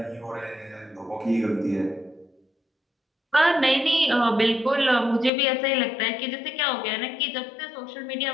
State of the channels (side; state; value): right; drops out; at 5.3 s